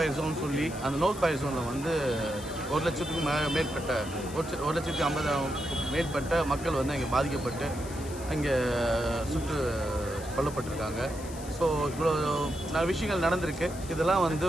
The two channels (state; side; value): noise; left; hiss, 15 dB below the sound